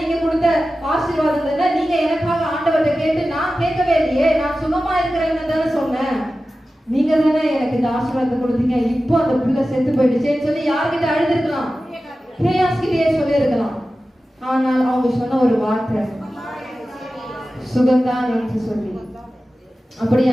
கொடுத்த ஆசீர்வாதம் தானே, நீங்க எனக்காக ஆண்டவர்கிட்ட கேட்டு, நான் கேட்கவே இல்லையே, நான் சுகமா இருக்கிறேன்னு தானே சொன்னேன், நீங்க தானே எனக்கு இந்த ஆசீர்வாதத்தை கொடுத்தீங்க, இப்போ அந்த புள்ள செத்து போயிடுச்சேன்னு சொல்லி யார்கிட்ட அழுதுருக்கலாம்? கேயாஸ்கிட்டயே சொல்லி இருக்கலாம். ஆனால் அவங்க சொன்ன ஒரு வார்த்தை சுகந்தான் என்று சொல்லி.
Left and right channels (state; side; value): normal; both; correlation 0.94